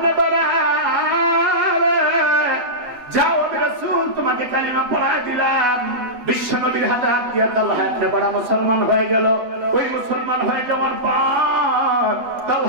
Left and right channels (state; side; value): late; left; 8.1 ms